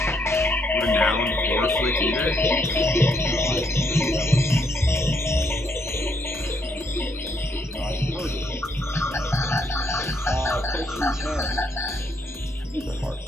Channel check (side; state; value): both; normal; correlation 0.73